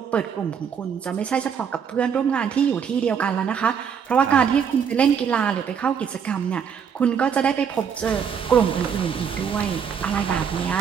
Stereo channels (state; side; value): quieter; left; 7.3 dB